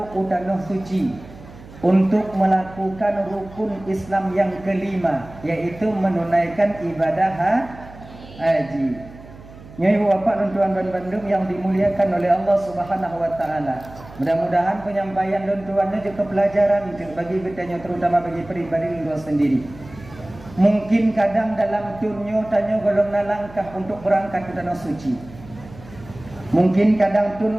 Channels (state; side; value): noise; right; hum, 19 dB below the sound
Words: utanah suci untuk melakukan rukun Islam yang kelima, yaitu menunaikan ibadah haji. Nyai bapak dan tuan dan bandung yang dimuliakan oleh Allah Subhanahu wa taala. Mudah-mudahan penyampaian dan tuannya juga pelajaran bagi kita terutama bagi pribadi lu sendiri. Mungkin kadang dalam tunyo tanya golong langkah untuk berangkat ke tanah suci. Mungkin kadang